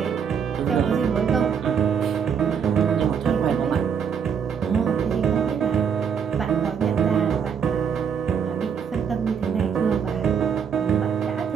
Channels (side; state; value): left; quieter; 7.1 dB